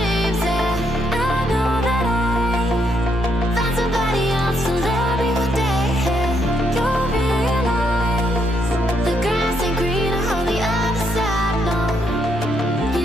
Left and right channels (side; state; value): both; normal; correlation 0.75